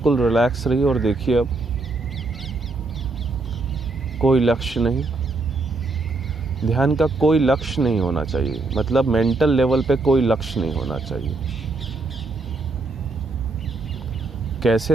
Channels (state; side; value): quieter; left; 3.4 dB